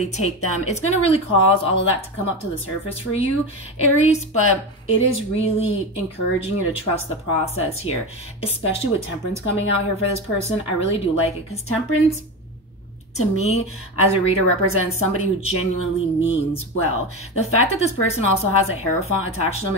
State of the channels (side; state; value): both; normal; correlation 0.20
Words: take them. It's going to really cause all of that to come up to the surface for you, Aries, but it is really encouraging you to trust the process here, especially with Temperance coming out here for this person. I really do like it, because Temperance, to me, as a reader, represents somebody who genuinely means well. The fact that this person also has a Hierophant attached to them